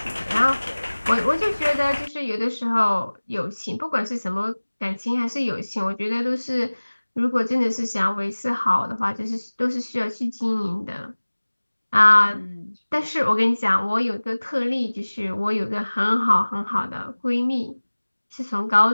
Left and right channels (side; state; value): both; inverted; correlation -1.00